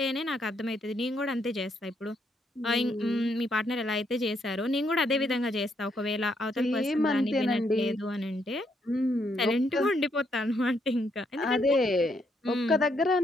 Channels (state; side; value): normal; both; correlation 0.75